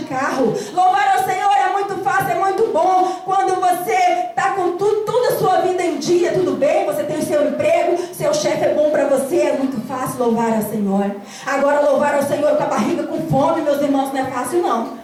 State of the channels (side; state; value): both; identical; correlation 1.00